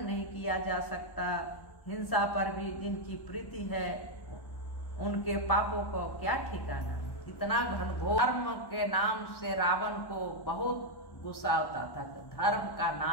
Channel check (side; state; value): right; late; 1.1 ms